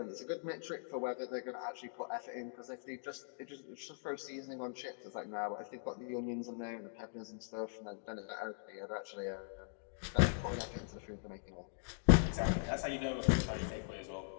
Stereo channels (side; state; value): right; silent; digital silence